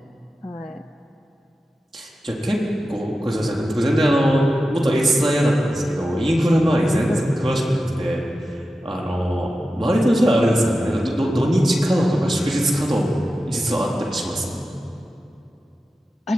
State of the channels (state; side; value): normal; both; correlation 0.92